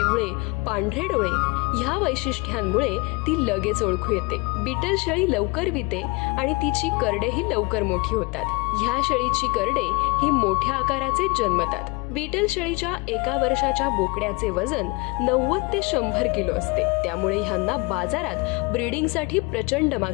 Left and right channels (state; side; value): quieter; right; 28.0 dB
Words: पांढरे डोळे ह्या वैशिष्ट्यांमुळे ती लगेच ओळखू येते। बीटल शेळी लवकर विते आणि तिची करडेही लवकर मोठी होतात। ह्या शेळीची करडे ही मोठ्या आकाराचे जन्मतात। बीटल शेळीच्या एका वर्षाच्या बोकड्याचे वजन 90 ते 100 किलो असते, त्यामुळे ह्यांना बाजारात ब्रीडिंगसाठी प्रचंड